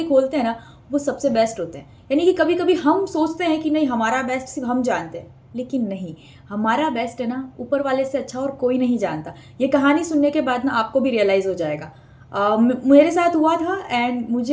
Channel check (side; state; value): both; identical; correlation 1.00